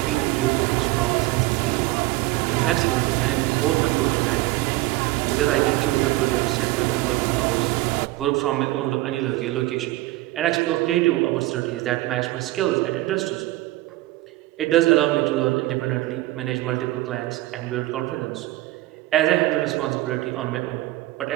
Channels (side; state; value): left; quieter; 18.3 dB